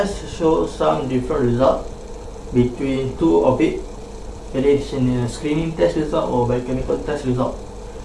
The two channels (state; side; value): identical; both; correlation 1.00